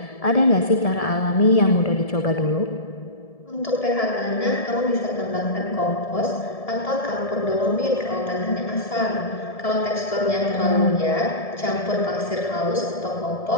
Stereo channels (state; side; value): late; right; 1.7 ms